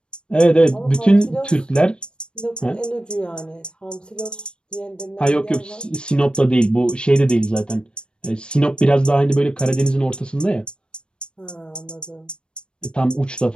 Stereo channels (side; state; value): right; late; 0.053 ms